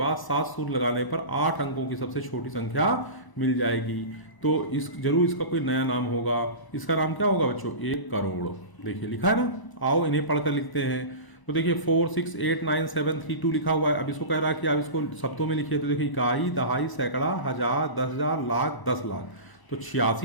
7 सूत्र लगाने पर 8 अंकों की सबसे छोटी संख्या मिल जाएगी। तो इस जरूर इसका कोई नया नाम होगा। इसका नाम क्या होगा बच्चों? 1 करोड़। देखिए लिखा है ना, आओ इन्हें पढ़कर लिखते हैं। तो देखिए 4 6 8 9 7 3 2 लिखा हुआ है। अब इसको कह रहा है कि आप इसको शब्दों में लिखिए। तो देखिए इकाई, दहाई, सैकड़ा, हजार, 10,000, लाख, 10 लाख। तो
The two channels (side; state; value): right; late; 1.0 ms